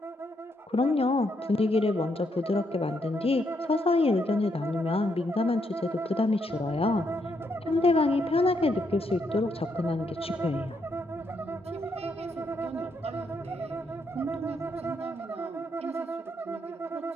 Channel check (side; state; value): both; normal; correlation 0.77